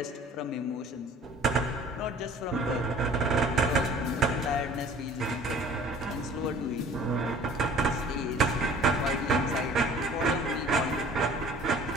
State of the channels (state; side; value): normal; both; correlation 0.49